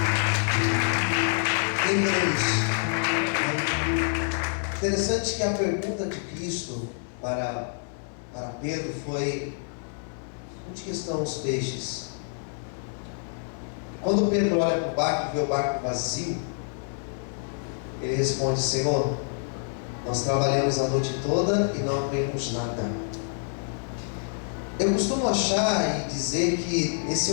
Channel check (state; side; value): silent; right; digital silence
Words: Quem crê nisso? Interessante que a pergunta de Cristo para Pedro foi: onde que estão os peixes? Quando Pedro olha para o barco e vê o barco vazio, ele responde: Senhor, nós trabalhamos a noite toda e não apanhamos nada. Eu costumo achar e dizer que